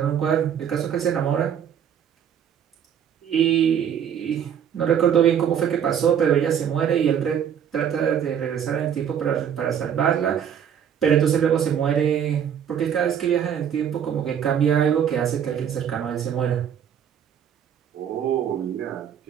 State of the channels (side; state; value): left; quieter; 8.7 dB